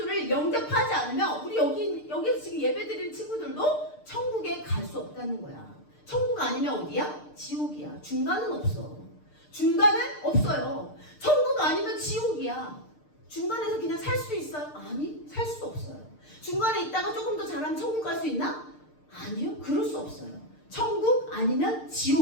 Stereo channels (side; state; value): right; late; 6.6 ms